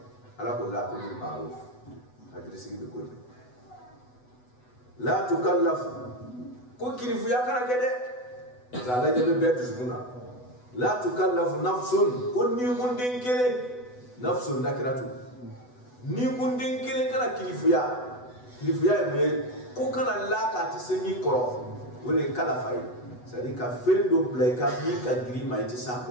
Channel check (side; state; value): right; late; 8.1 ms